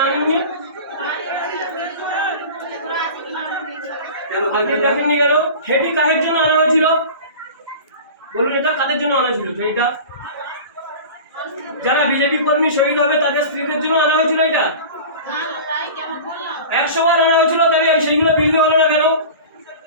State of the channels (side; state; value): both; inverted; correlation -0.35